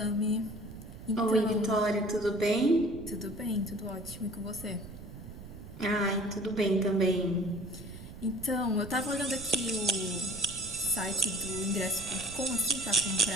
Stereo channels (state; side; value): noise; right; rumble, 14 dB below the sound